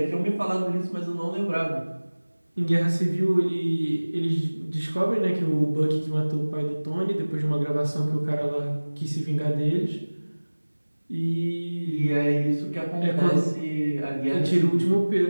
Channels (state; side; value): inverted; both; correlation -1.00